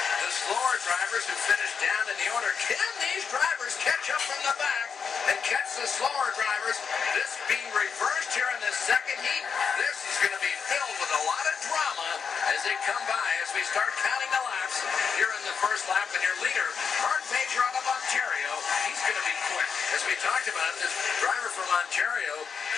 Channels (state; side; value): quieter; right; 6.2 dB